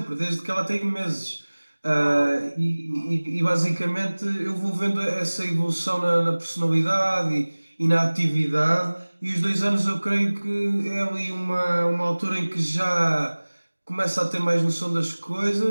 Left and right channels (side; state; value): both; inverted; correlation -1.00